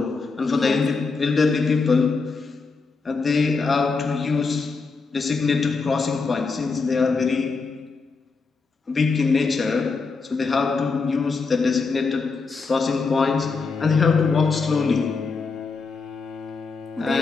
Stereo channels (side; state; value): right; quieter; 4.5 dB